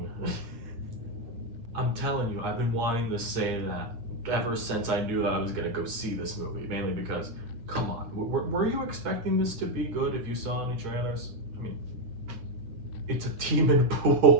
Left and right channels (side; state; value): left; late; 8.8 ms